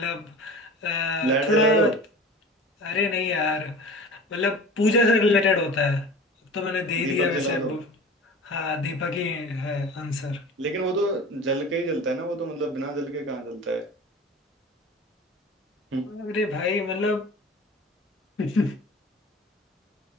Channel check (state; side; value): normal; both; correlation 0.38